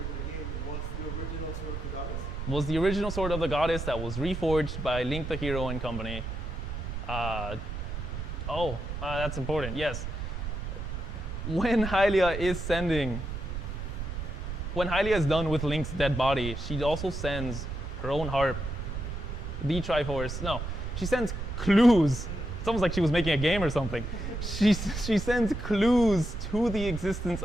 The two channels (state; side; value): noise; right; rumble, 5 dB below the sound